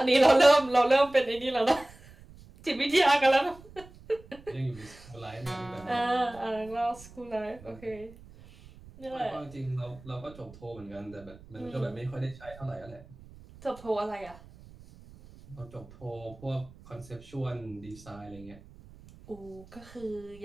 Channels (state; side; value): noise; right; rumble, 21 dB below the sound